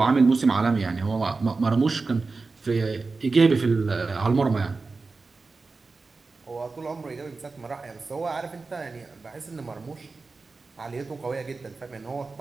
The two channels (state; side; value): quieter; left; 4.0 dB